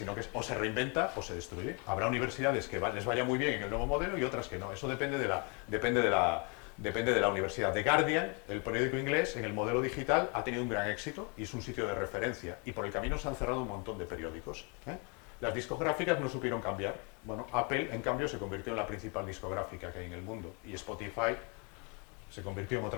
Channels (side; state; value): right; quieter; 33.9 dB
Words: que o se reinventa o se destruye. Habrá universidades que les vaya muy bien en el nuevo modelo y otras que no. Eso depende de la universidad. The Guardian, el periódico inglés, en el modelo digital ha tenido un gran éxito y es un sitio de referencia. Y por el camino se han cerrado un montón de periódicos. Las discográficas no supieron cambiar. Bueno, Apple, en cambio, se convirtió en la principal discográfica que hay en el mundo. Y Spotify se convirtió en